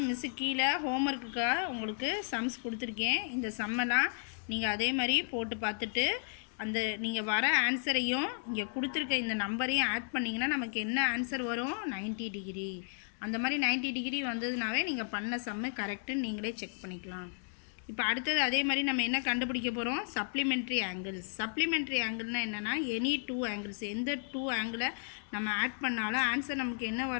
மிஸ்ஸு கீழே ஹோம்ஒர்க்குக்காக உங்களுக்கு சம்ஸ் கொடுத்துருக்கேன். இந்த சம்மெல்லாம் நீங்கள் அதே மாதிரி போட்டு பார்த்துட்டு அந்த நீங்கள் வர ஆன்சரையும் இங்கே கொடுத்துருக்க இந்த நம்பரையும் ஆட் பண்ணிங்கன்னா நமக்கு என்ன ஆன்சர் வரும்? 90 டிகிரி. அந்த மாதிரி 90 டிகிரி வந்ததுனாவே நீங்கள் பண்ண சம்மு கரெக்டுன்னு நீங்களே செக் பண்ணிக்கலாம். இப்போ அடுத்தது அதே மாதிரி நம்ம என்ன கண்டுபிடிக்க போகிறோம்? Supplementary angles. சப்ளிமெண்ட்ரி ஆங்கிள்னால் என்னென்னா, எனி டூ ஆங்கிள்ஸ், எந்த டூ ஆங்கிளை நம்ம ஆட் பண்ணாலும் ஆன்சர் நமக்கு என்ன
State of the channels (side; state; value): right; silent; digital silence